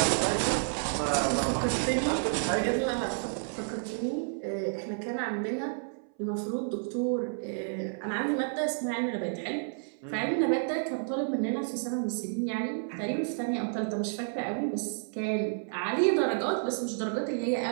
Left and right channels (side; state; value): left; silent; 57 dB below the other